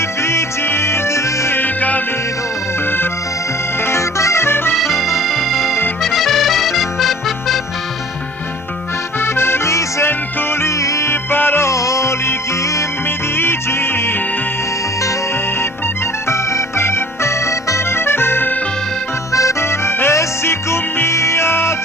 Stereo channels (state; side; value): normal; both; correlation 0.49